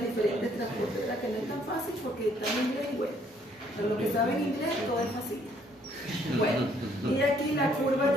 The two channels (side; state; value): both; normal; correlation 0.65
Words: diferentes transportes, ¿verdad? Que no es tan fácil porque está en inglés y bueno, para los que saben inglés todo es fácil. Bueno, y aquí la curva